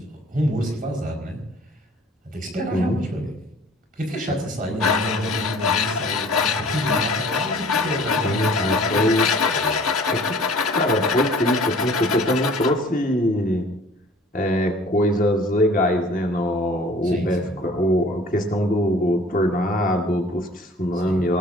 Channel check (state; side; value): normal; both; correlation 0.50